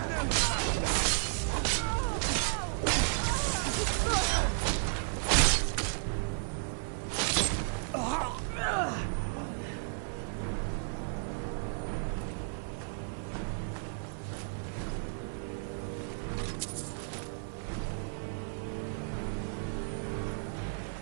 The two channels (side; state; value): left; silent; 56 dB below the other